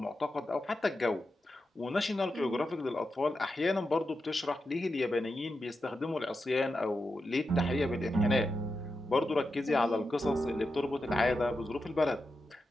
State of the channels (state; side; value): normal; both; correlation 0.88